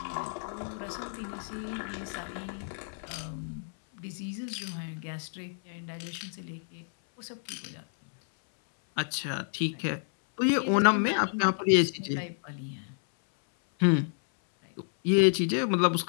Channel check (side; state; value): right; silent; 58 dB below the other